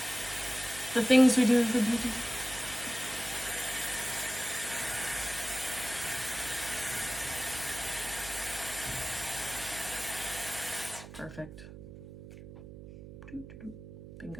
The things we do for beauty. Perfect.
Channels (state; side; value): noise; right; hum, 14 dB below the sound